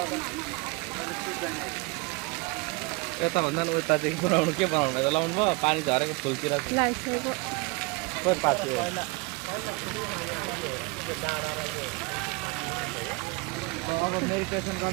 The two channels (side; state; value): left; quieter; 26.7 dB